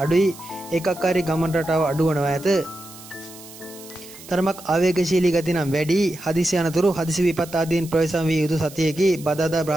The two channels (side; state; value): right; noise; hiss, 18 dB below the sound